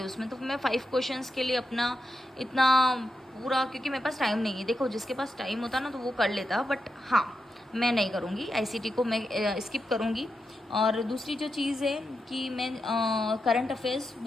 हैं उसमें। तो मैं 5 क्वेश्चंस के लिए अपना इतना पूरा, क्योंकि मेरे पास टाइम नहीं है। देखो जिसके पास टाइम होता ना तो वो कर लेता, बट हाँ मैं नहीं करूँगी, आईसीटी को मैं स्किप करूँगी। और दूसरी जो चीज़ है कि मैं करंट अफेयर्स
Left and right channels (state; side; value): normal; both; correlation 0.87